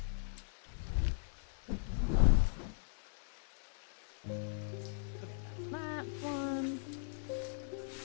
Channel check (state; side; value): silent; right; digital silence